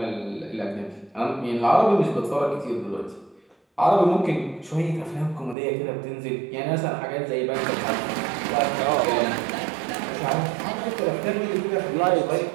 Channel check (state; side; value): drops out; left; at 5.6 s